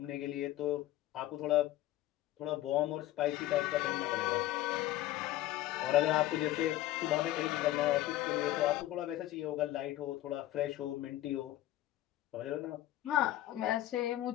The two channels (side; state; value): right; quieter; 14.7 dB